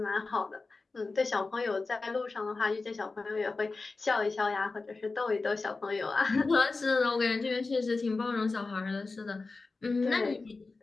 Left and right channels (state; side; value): quieter; right; 3.8 dB